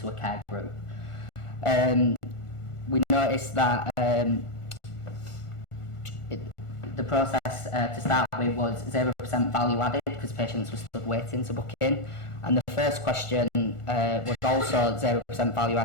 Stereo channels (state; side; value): late; right; 1.4 ms